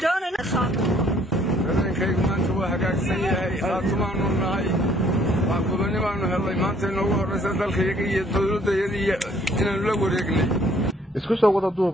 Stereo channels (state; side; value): normal; both; correlation 0.62